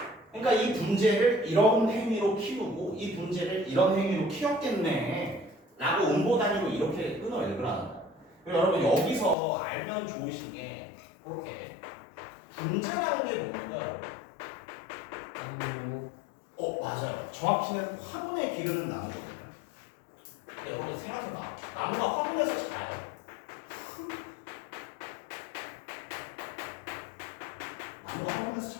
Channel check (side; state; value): right; drops out; at 9.3 s